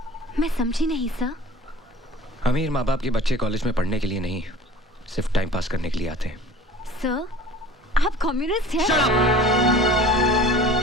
मैं समझी नहीं सर। अमीर माँ बाप के बच्चे कॉलेज में पढ़ने के लिए नहीं, सिर्फ टाइम पास करने के लिए आते हैं। सर, आप कम्युनिस्ट हैं?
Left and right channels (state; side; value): normal; both; correlation 0.44